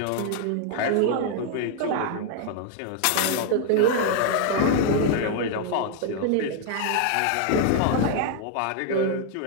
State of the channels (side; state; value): both; different; correlation 0.00